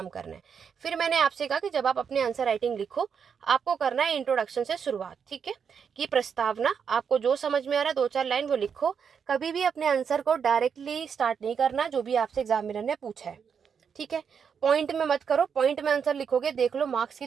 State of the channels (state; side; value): quieter; left; 6.8 dB